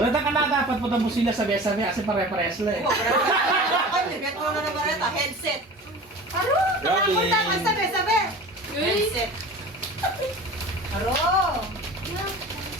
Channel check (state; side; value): normal; both; correlation 0.37